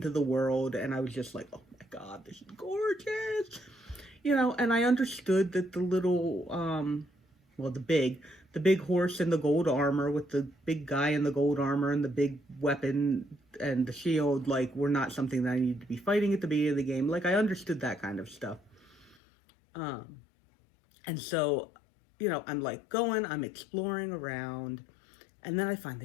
the world, and I was just like, oh my god, this is gorgeous. And I understood that the little, well, the big horse in the gold armor with the big guy in the gold armor and the big weapon and the shield, like, were not something that I needed to be fighting at the beginning of the game. Like, I understood that kind of stuff. Um, and so, I'm like I'm exploring around, and then I find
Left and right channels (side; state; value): right; drops out; at 19.2 s